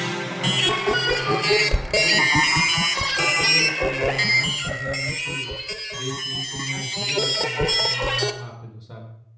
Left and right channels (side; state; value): both; identical; correlation 1.00